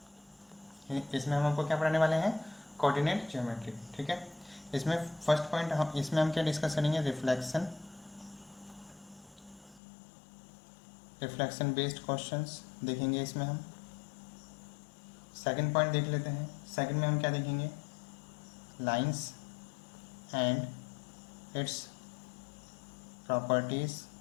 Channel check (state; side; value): drops out; right; at 9.8 s